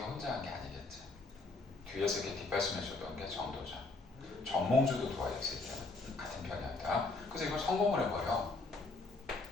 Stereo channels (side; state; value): right; quieter; 3.4 dB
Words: 혼자 한 게 아니겠지. 뒤에서 이렇게 뒷받침해주던 게 정도전. 정몽주도 도와줬을 때 같은 편이었다. 그래서 이걸 성공을 해버려.